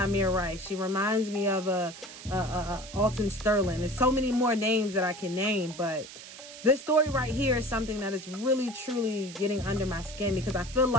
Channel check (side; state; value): right; noise; hiss, 15 dB below the sound